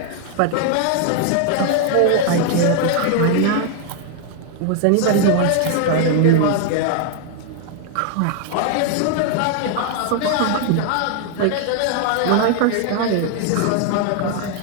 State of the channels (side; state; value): both; different; correlation 0.00